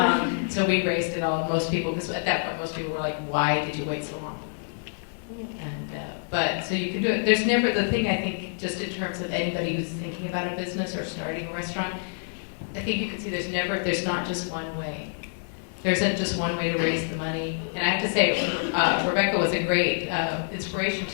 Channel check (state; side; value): silent; right; 60 dB below the other